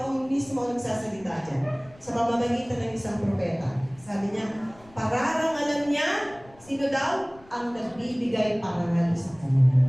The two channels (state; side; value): noise; left; rumble, 25 dB below the sound